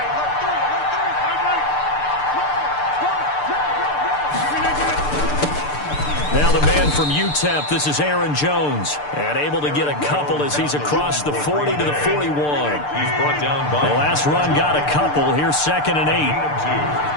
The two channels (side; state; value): right; late; 6.8 ms